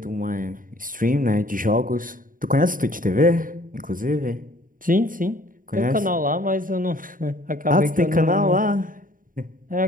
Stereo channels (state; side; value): late; left; 0.40 ms